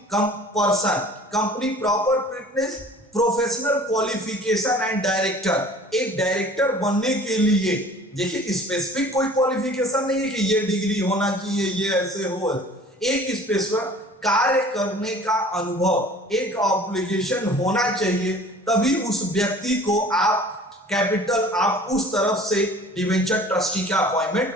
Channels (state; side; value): normal; both; correlation 0.48